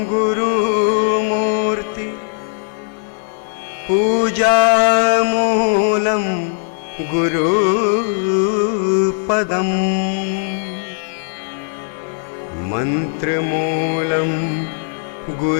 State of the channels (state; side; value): silent; right; 56 dB below the other